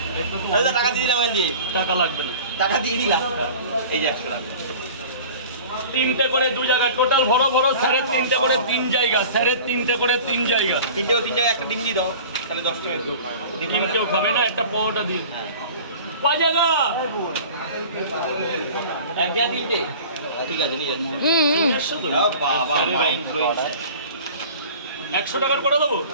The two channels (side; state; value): both; inverted; correlation -0.41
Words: আরে টাকা দিয়ে দিলাম দিয়ে টাকা লাগবে না টাকা দিয়ে দিলাম এই যে 100 টাকা তিনটে করে 2 জায়গা টোটাল বড় বড় স্যারের তিনটে করে 3 জায়গা স্যারের তিনটে করে 3 জায়গা তিন জায়গা একটা ডিম দিয়ে দাও তাহলে 10 টাকা ডিম কেউ খাবে না একটা পরোটা দিন কয় জায়গা এক জায়গা তিনটে ঠিক আছে নিয়ে যাচ্ছি বাবা মাইন্ড ব্লোয়িং 100 টাকার করে দেবো